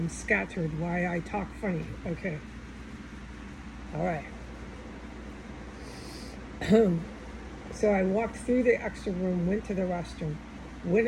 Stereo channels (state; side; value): identical; both; correlation 1.00